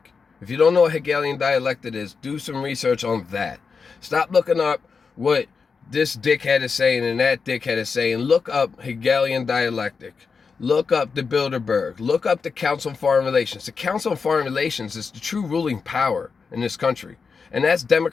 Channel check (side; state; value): right; quieter; 5.2 dB